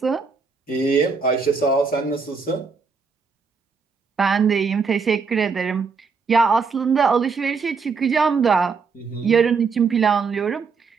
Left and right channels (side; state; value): left; quieter; 5.1 dB